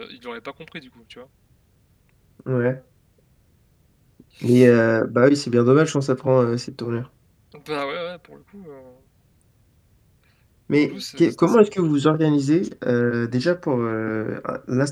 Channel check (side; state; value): both; identical; correlation 1.00